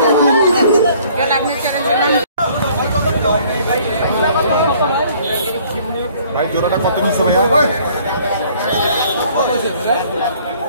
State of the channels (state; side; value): inverted; both; correlation -0.58